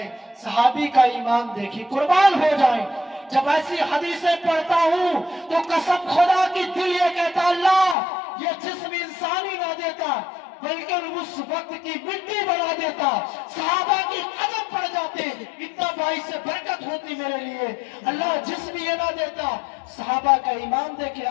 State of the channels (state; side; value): drops out; right; at 8.0 s